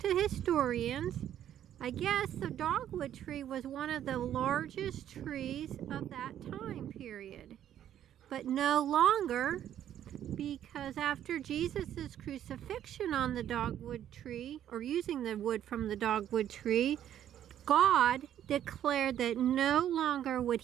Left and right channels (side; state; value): left; quieter; 10.8 dB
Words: historians, I guess the dogwood tree was one of the largest trees of that time period. But no longer, because after Jesus' crucifixion on the dogwood tree, or using the wood from the dogwood tree, God declared that no longer would